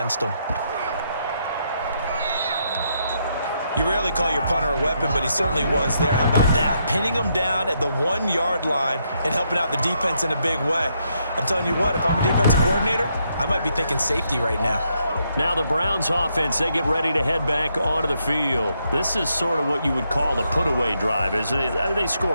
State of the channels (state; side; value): inverted; both; correlation -0.77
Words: them. You rarely call your punter a weapon, but he certainly was there. How about that? Pinning him down at the 1-yard line and helping out the defense in a big way. I'm telling you what, if I'm a defensive coordinator, I might be thinking safety right now. Now the Browns offense, they get ready to head back onto the field. This is sort of what you would call a put-away drive, isn't it? They